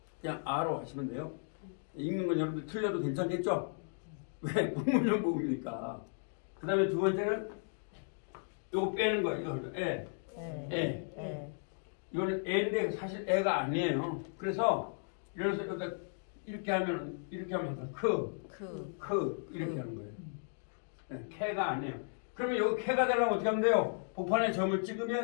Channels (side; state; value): right; silent; digital silence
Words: 그냥 아로 하시면 돼요. 읽는 건 여러분들 틀려도 괜찮겠죠? 왜? 불분명 모음이니까. 그 다음에 두 번째는 요거 빼는 거예요. 이거 애. 이거는 애인데 사실 애가 아니에요. 그래서 이래서 여기다 이렇게 하면 이렇게 이렇게 하는 거예요. 네, 캐가 아니에요. 그러면 여기 캐가 되려면 어떻게 하면 돼요? 복판에 점을